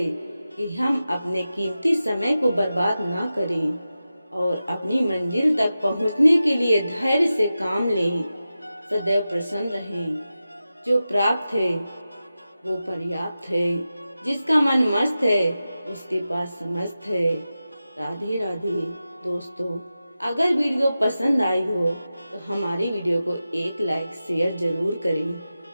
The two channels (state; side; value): inverted; both; correlation -0.93